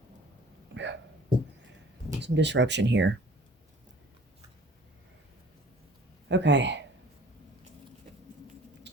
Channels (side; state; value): both; normal; correlation 0.49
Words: some disruption here. Okay.